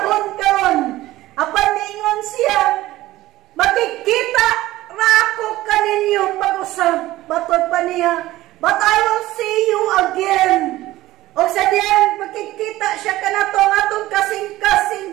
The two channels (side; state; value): left; quieter; 16.5 dB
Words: karon. Apan niingon siya, makikita ra ako kaninyo pag-usab. Batod pa niya, but I will see you again. O sa diyan, makikita siya kanato ang atong kasing-kasing